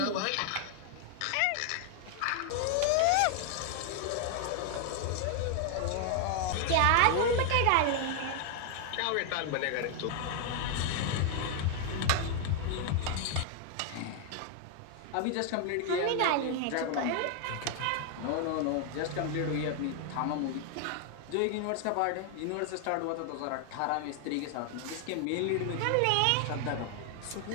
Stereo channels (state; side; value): different; both; correlation 0.00